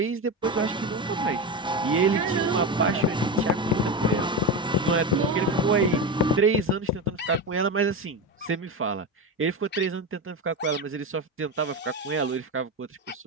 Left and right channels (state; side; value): normal; both; correlation 0.18